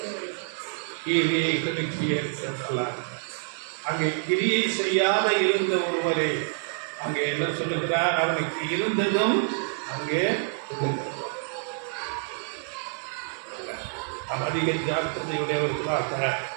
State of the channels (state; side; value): silent; left; 59 dB below the other